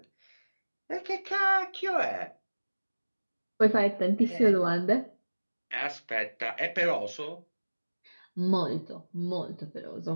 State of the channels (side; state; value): both; inverted; correlation -1.00